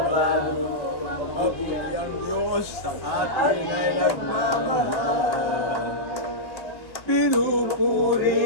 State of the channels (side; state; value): right; late; 1.1 ms